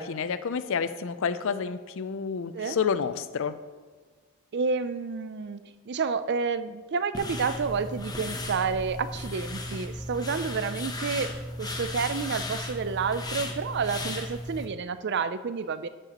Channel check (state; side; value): normal; both; correlation -0.18